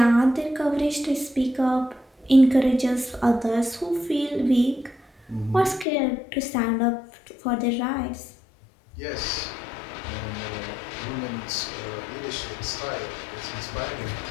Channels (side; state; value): right; drops out; at 5.9 s